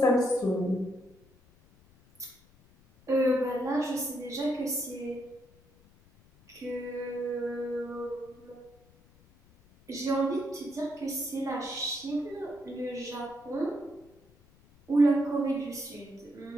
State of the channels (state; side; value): noise; left; rumble, 28 dB below the sound